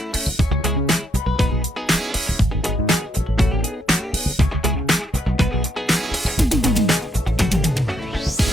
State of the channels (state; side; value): normal; both; correlation 0.75